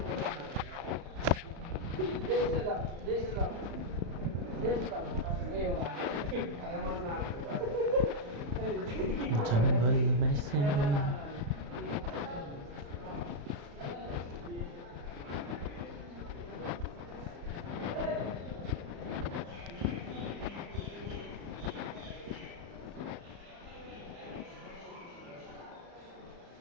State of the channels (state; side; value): late; left; 35 ms